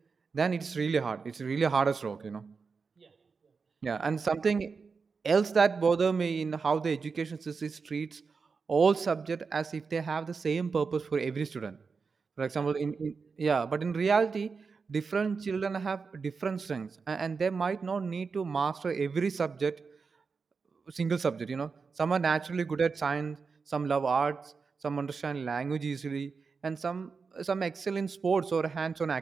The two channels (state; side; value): quieter; left; 5.0 dB